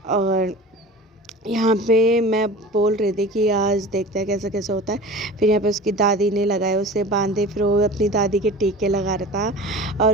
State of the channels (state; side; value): normal; both; correlation 0.37